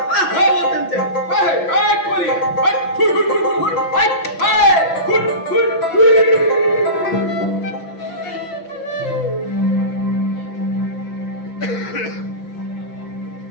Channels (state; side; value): late; right; 6.0 ms